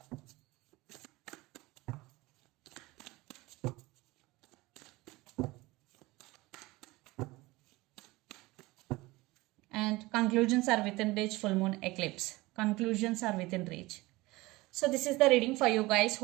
And conclusions are within reach, full moon eclipse. Conclusions are within reach. So this is the reading for you guys.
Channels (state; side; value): quieter; left; 20.9 dB